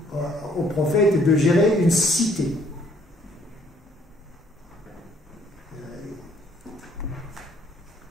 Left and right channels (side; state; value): both; normal; correlation 0.64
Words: prophète de gérer une cité.